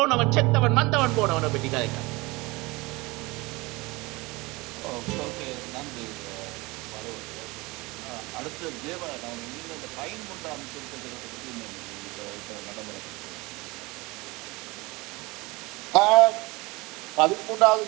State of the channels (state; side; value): quieter; left; 23.6 dB